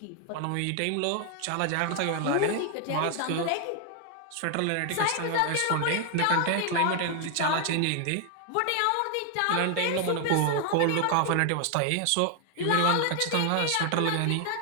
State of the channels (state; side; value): different; both; correlation 0.00